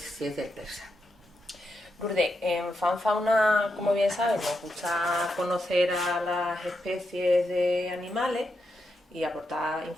del persa. Lourdes, en FanFauna, como bien sabes, nos gusta conocer a las especies de animales y aportar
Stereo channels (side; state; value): both; normal; correlation 0.85